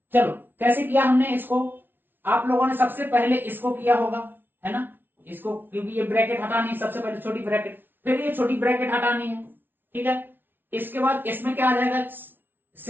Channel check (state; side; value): late; left; 0.098 ms